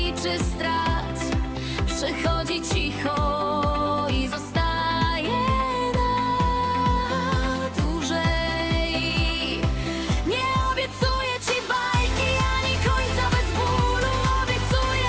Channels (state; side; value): identical; both; correlation 1.00